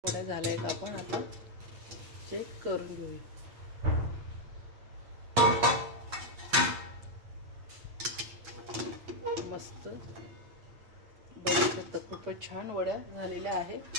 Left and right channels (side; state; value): left; late; 8.4 ms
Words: थोड्या झाल्या का आपण आता चेक करून घेऊया. मस्त बघू शकता खूपच छान वड्या झालेल्या आहे.